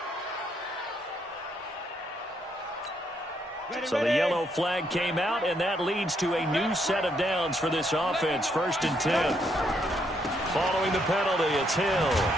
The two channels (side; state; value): both; normal; correlation 0.74